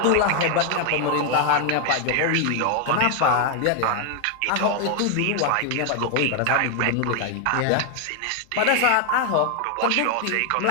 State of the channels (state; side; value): different; both; correlation 0.01